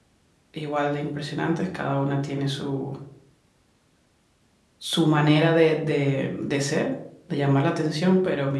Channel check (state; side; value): identical; both; correlation 1.00